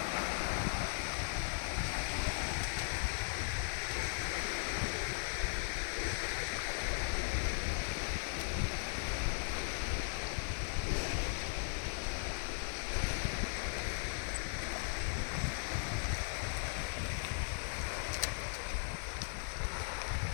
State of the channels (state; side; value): silent; right; digital silence